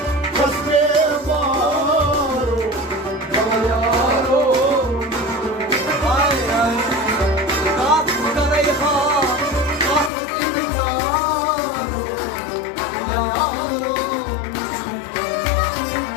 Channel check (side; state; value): right; drops out; at 10.1 s